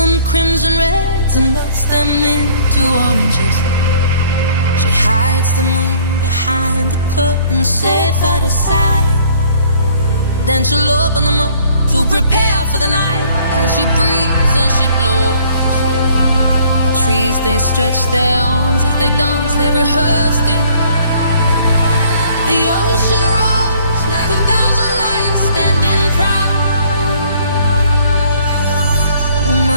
crimson reds and melts them into oranges. She hides the moon behind the curtain, safe out of sight. Then she'll open them up to prepare for the night. As she breathes and she blows, the trees, they stretch their arms as they dance, they rehearsed it. The ocean rolls like 1,000 lions standing proud. Oh,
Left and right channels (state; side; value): inverted; both; correlation -0.58